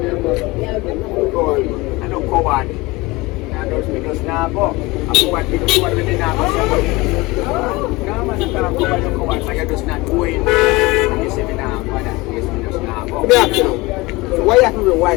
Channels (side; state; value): right; quieter; 21.8 dB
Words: Go on. I don't coward. I don't speak us now, but I coward people who are really now. No, man, I can't coward, but you're just not going. And you say me now, but that is me just now. Let me ask you. Why you have to be